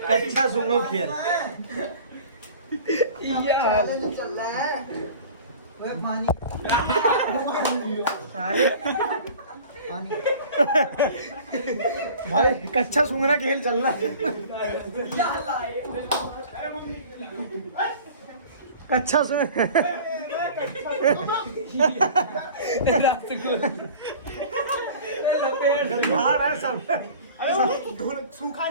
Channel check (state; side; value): inverted; both; correlation -0.43